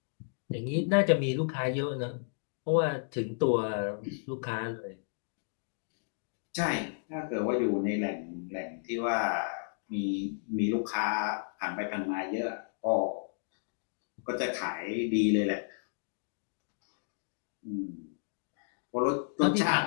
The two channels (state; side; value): silent; right; digital silence